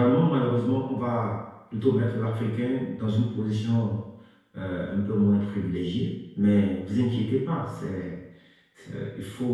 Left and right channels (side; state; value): both; identical; correlation 1.00